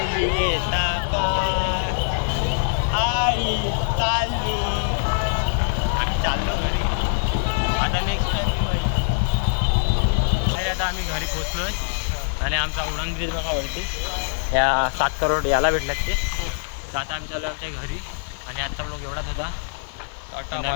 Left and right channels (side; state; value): right; silent; 57 dB below the other